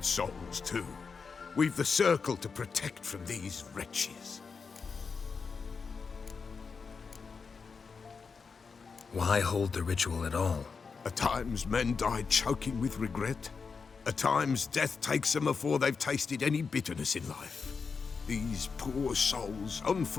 souls too. We've the circle to protect from these wretches. Why hold the ritual at all? At times men die choking with regret. At times death takes them before they've tasted any bitterness in life. These poor souls,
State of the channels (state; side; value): quieter; right; 5.2 dB